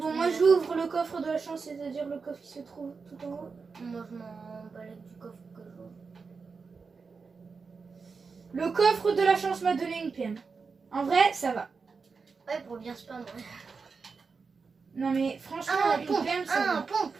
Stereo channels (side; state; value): left; quieter; 4.9 dB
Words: tout, moi j'ouvre le coffre de la chance, c'est-à-dire le coffre qui se trouve tout en haut. Moi, je m'en balèque du coffre que j'ouvre. Le coffre de la chance m'a donné une PM. En vrai, ça va. Ouais, pour bien spam. Ouais. Non mais franchement, Ah, une pompe. PM, ça Ah, va. pompe.